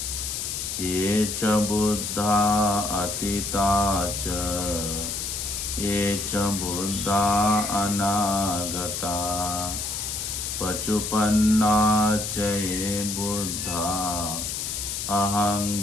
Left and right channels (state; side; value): noise; left; hiss, 4 dB below the sound